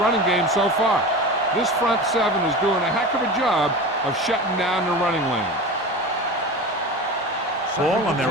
game so far. This front seven is doing a heck of a job of shutting down the running lane. Ball on their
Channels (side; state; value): both; normal; correlation 0.30